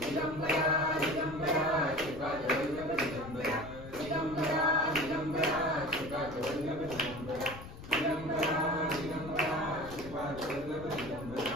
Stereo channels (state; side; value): noise; left; rumble, 14 dB below the sound